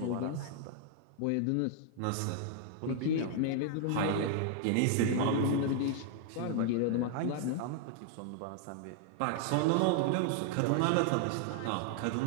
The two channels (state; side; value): different; both; correlation 0.00